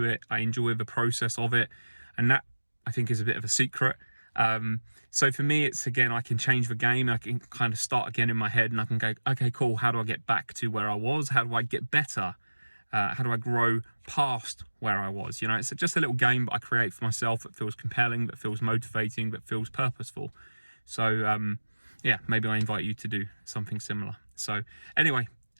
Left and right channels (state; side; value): inverted; both; correlation -1.00